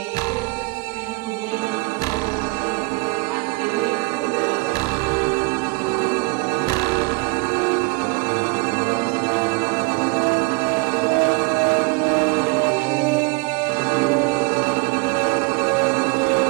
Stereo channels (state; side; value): quieter; left; 27.5 dB